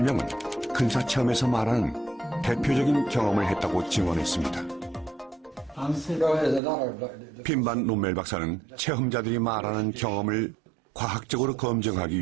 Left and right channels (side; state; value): left; drops out; at 6.6 s